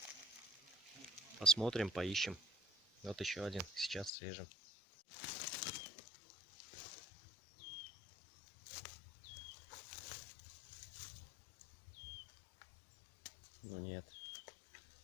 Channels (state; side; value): drops out; right; at 4.1 s